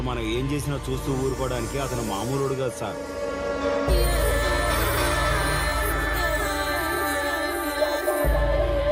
మనం ఏం చేసినా చూస్తూ ఊరుకోవడానికి అతను మామూలుడు కాదు సార్.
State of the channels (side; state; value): both; identical; correlation 1.00